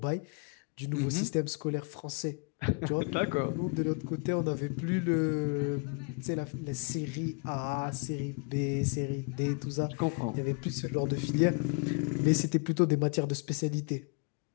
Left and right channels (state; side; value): quieter; right; 33.9 dB